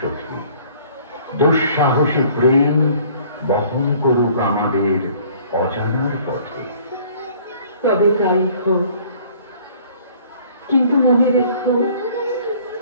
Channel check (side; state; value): both; inverted; correlation -0.55